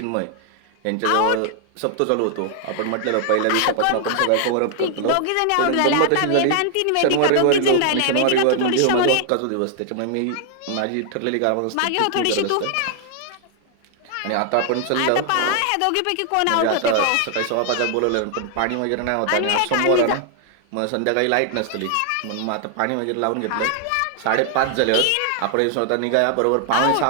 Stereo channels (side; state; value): both; different; correlation 0.00